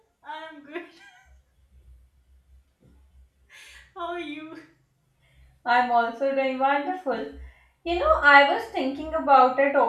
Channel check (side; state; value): both; identical; correlation 1.00